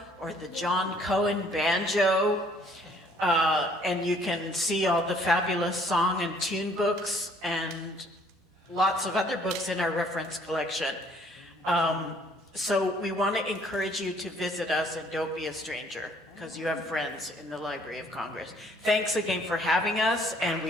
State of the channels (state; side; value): normal; both; correlation 0.61